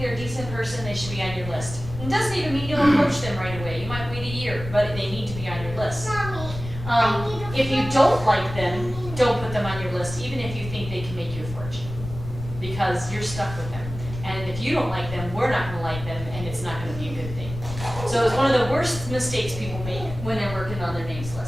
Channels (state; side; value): noise; left; rumble, 10 dB below the sound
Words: they're a decent person, they should be on your list. It doesn't even mean you'll approach them right away. You might wait a year, but they need to be on your list. If you don't like them, don't put them on your list, even if you think they can make you a fortune, because you're stuck with them. And if you don't like them, we're not gonna like them, and it's not gonna be a good thing. So it's one of the worst mistakes people make when they're working on their names